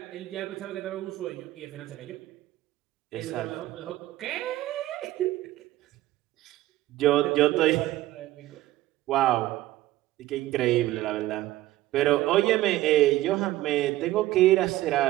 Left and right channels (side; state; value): left; quieter; 16.1 dB